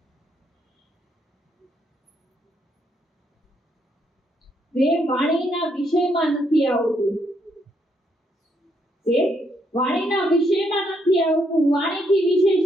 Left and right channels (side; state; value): both; normal; correlation 0.75